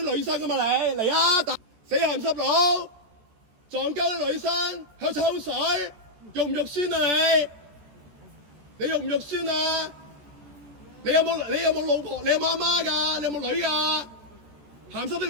女生㗎嘛你嚟啊！死鹹濕佬，撞鳩啲女生喺度抽水，肉唔肉酸啊你？你肉唔肉酸啊？你有冇老婆？你有冇阿媽㗎？你有冇女㗎？鹹濕啲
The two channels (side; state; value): left; late; 13 ms